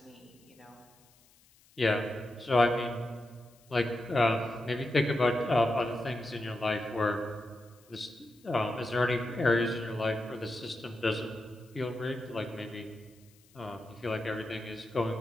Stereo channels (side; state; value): left; noise; hiss, 29 dB below the sound